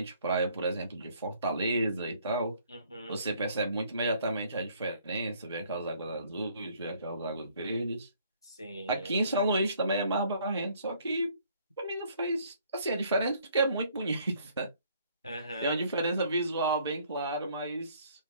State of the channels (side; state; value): both; inverted; correlation -0.62